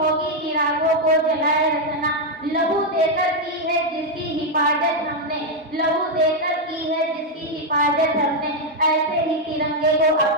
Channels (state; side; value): normal; both; correlation 0.01